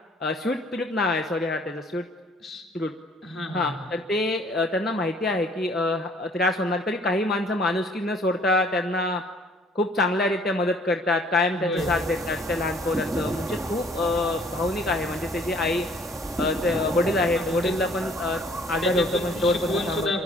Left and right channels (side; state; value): both; normal; correlation 0.58